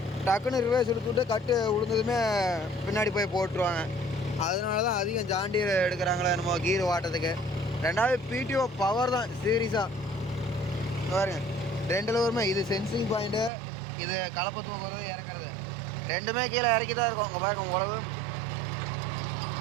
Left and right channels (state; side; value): drops out; left; at 13.5 s